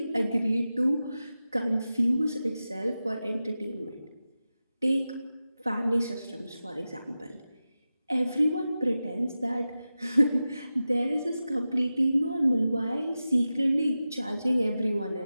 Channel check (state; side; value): inverted; both; correlation -0.93